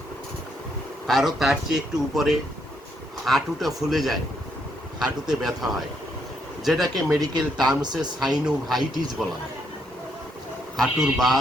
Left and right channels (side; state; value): both; normal; correlation 0.75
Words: কারো তার চেয়ে একটু উপরে হাঁটুটা ফুলে যায়, হাঁটুতে ব্যথা হয়, যেটাকে মেডিকেল টার্মসে সাইনোভাইটিস বলা হয়, হাঁটুর